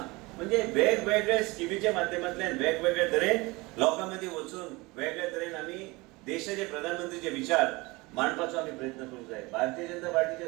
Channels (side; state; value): left; quieter; 23.6 dB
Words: म्हणजे वेगवेगळ्या स्किमीच्या माध्यमांतल्यान वेगवेगळ्या तरेन लोकांमध्ये वचून वेगळ्या तरेन आम्ही देशाचे प्रधानमंत्रीचे विचार मांडपाचो आम्ही प्रयत्न करूंक जाय. भारतीय जनता पार्टीचे